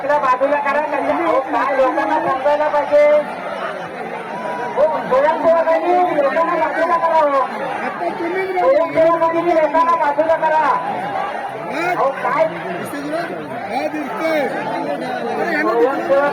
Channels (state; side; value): identical; both; correlation 1.00